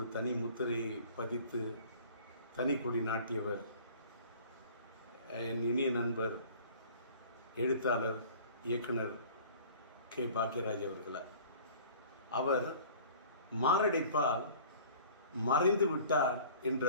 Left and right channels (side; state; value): both; inverted; correlation -0.47